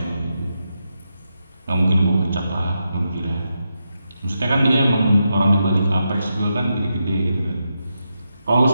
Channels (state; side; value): inverted; both; correlation -0.85